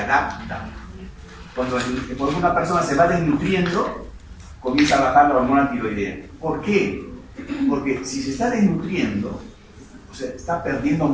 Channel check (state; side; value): identical; both; correlation 1.00